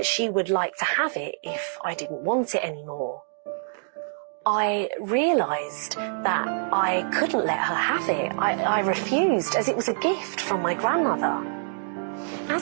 she would like to have it if I didn't want it anymore. I realised that I couldn't let her have it. I refused, as it was a gift from my grandmother.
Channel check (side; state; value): left; silent; digital silence